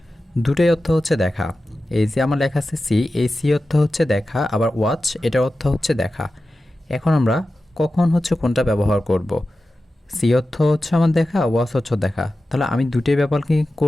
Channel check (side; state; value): both; normal; correlation 0.93